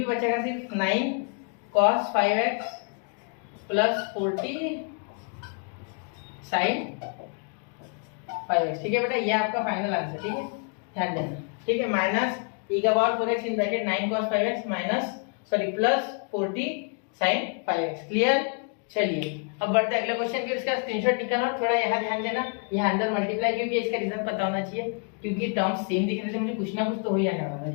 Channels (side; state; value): right; quieter; 38.3 dB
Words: बचेगा, सिर्फ 9 cos 5x plus 40 sine 5x, ठीक है बेटा। ये आपका फाइनल आंसर, ठीक है, ध्यान देना, ठीक है। माइनस e का power 4x in bracket 9 cos 5x minus plus 40 sine 5x। Clear? चलिए अब बढ़ते अगले क्वेश्चन के, इसका स्क्रीनशॉट निकालना और थोड़ा यहाँ ध्यान देना, यहाँ अंदर मल्टीप्लाई, क्योंकि इसका रीजन पता होना चाहिए, क्योंकि टर्म्स सेम दिख रहे थे, मुझे कुछ ना कुछ तो हो ही जाने वाला था,